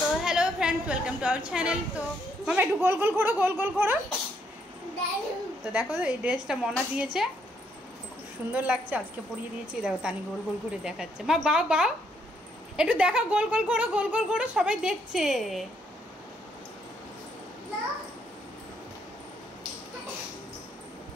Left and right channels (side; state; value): both; normal; correlation 0.72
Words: Hello friends welcome to our channel. तो मामा एक गोल गोल घोड़ो गोल गोल घोड़ो। तो देखो এই ড্রেসটা মনা দিয়েছে, খুব সুন্দর লাগছে। আজকে পরিয়ে দিয়েছি। দেখো তানি গোল গোল ঘুরে দেখাচ্ছে। মা বাও বাও একটু দেখো, গোল গোল ঘোড়ো গোল গোল ঘোড়ো, সবাই দেখছে।